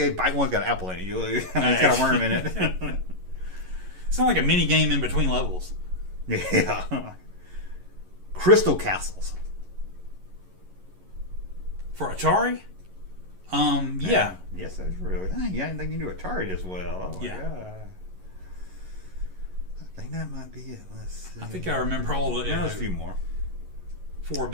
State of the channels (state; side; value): late; left; 11 ms